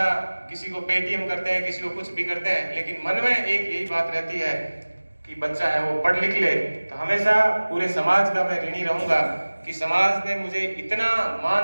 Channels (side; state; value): both; inverted; correlation -1.00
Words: किसी को पेटीएम करते हैं, किसी को कुछ भी करते हैं, लेकिन मन में एक यही बात रहती है कि बच्चा है वो पढ़ लिख ले। तो हमेशा पूरे समाज का मैं ऋणी रहूंगा कि समाज ने मुझे इतना